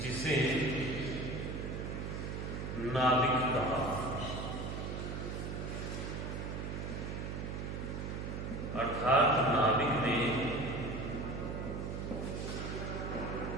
जिसे नाभिक कहा। अर्थात नाभिक में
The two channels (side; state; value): right; noise; hum, 4 dB below the sound